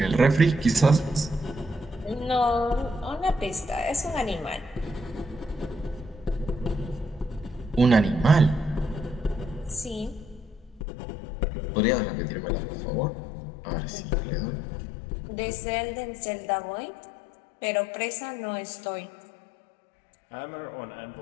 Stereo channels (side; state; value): right; drops out; at 10.8 s